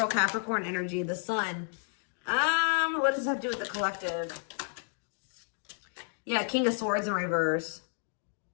Capricorn energy, the Sun. What does this have to do with the collective? Yeah, King of Swords in reverse.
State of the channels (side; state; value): right; silent; 57 dB below the other